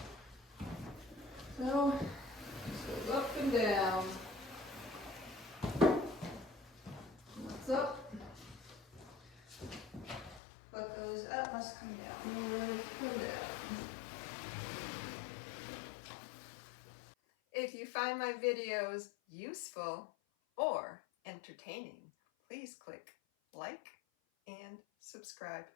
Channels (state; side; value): drops out; right; at 10.4 s